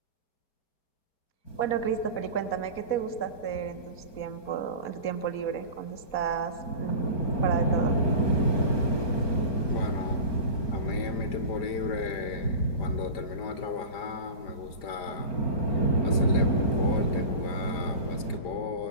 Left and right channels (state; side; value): late; right; 5.0 ms